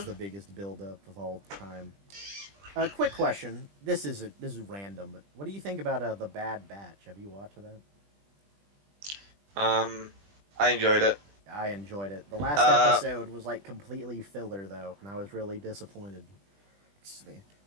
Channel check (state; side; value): late; left; 20 ms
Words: the biggest build-up of all time. Quick question. This is random, but what do you think about The Bad Batch? Have you watched that? I enjoyed it. I enjoyed it. The last episode was, like, completely filler, though, and I was really disappointed. Excuse me.